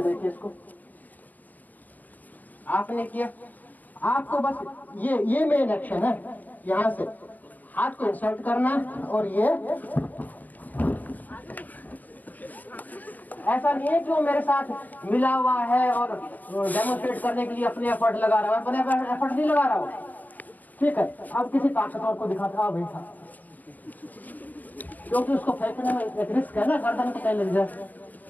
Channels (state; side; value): late; right; 0.082 ms